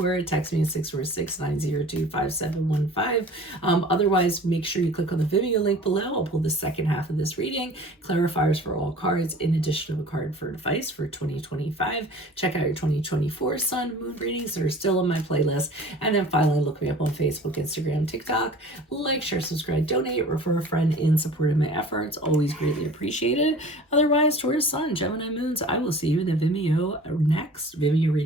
text me at 646-902-5715. Otherwise, make sure you click on the Vimeo link below. I'll pull the second half of this reading, clarifiers for all cards, in addition to a card for advice for 2025. Check out your 2024 Sun Moon readings that are still on my playlist. And then finally, look me up on Facebook, Instagram, TikTok. Like, share, subscribe, donate, refer a friend in support of my efforts. Always greatly appreciated. Otherwise, Taurus Sun, Gemini Moons, I will see you in the Vimeo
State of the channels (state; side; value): normal; both; correlation 0.44